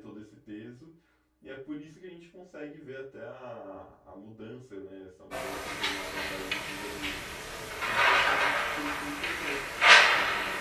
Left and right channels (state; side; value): identical; both; correlation 1.00